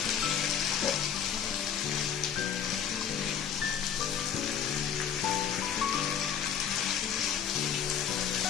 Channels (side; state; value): right; quieter; 8.3 dB